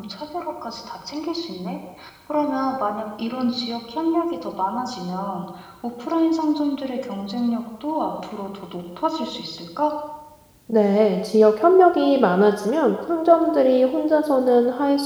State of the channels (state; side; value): identical; both; correlation 1.00